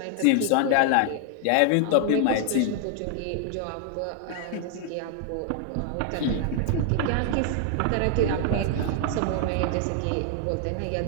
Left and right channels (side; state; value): both; different; correlation 0.00